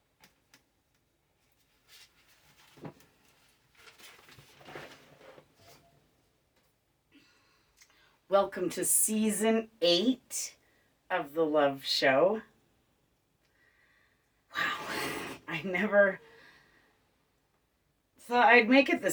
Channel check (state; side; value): identical; both; correlation 1.00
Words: Welcome to season 8 of the Love Show. Wow, I never thought I'd make it